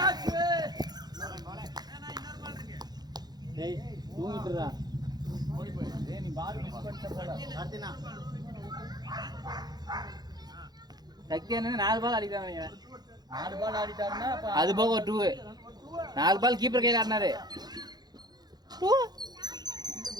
டேய் தூங்கிட்டுடா. டேய் நீ பால் மிஸ் பண்ணிட்ட போல. கார்த்தினா சக்தி அண்ணன் 4 பால் அடிச்சாங்க. 4 பால் ஆடிட்டாருன்னா அப்ப அது போக ஒரு 2 4 பால் கீப்பர் கையில ஆடினாரு. 2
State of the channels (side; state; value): left; late; 0.19 ms